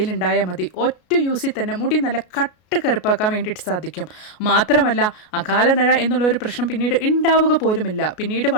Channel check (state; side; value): late; right; 33 ms